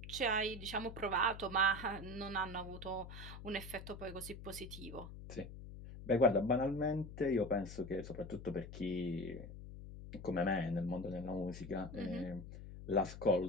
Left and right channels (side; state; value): left; noise; hum, 12 dB below the sound